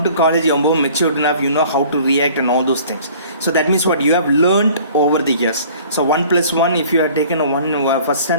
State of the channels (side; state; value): both; inverted; correlation -0.50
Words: to college, you're more matured enough, you know how to react and all those things. So that means what you have learned over the years. So 1 + 1, if you have taken a first